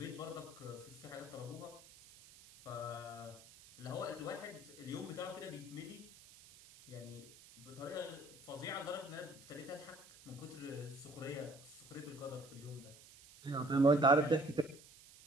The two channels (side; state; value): right; noise; hiss, 20 dB below the sound